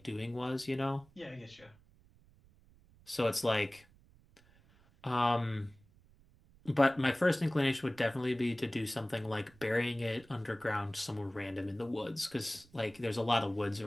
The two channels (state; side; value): noise; right; rumble, 28 dB below the sound